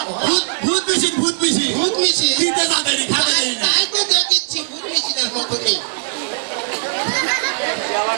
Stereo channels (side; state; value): left; silent; 67 dB below the other